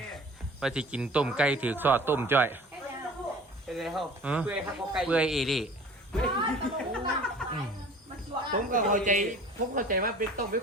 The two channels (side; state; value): both; normal; correlation 0.45